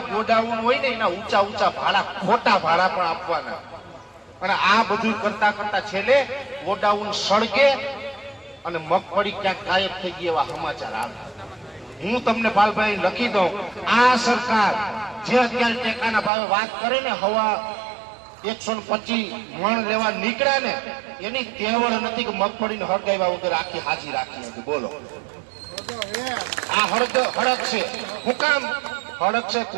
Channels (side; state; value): left; drops out; at 16.3 s